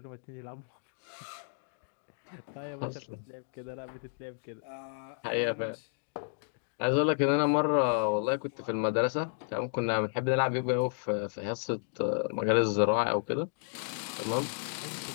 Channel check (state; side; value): silent; right; digital silence